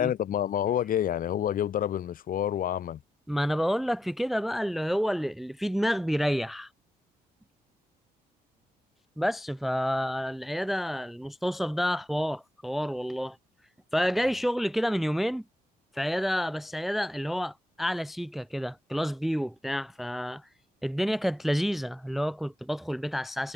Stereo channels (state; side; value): normal; both; correlation 0.85